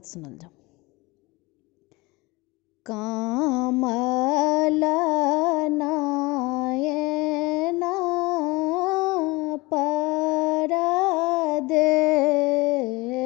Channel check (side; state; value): right; quieter; 23.2 dB